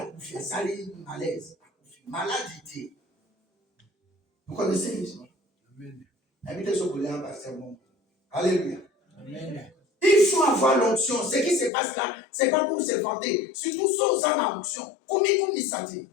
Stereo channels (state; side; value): drops out; right; at 11.7 s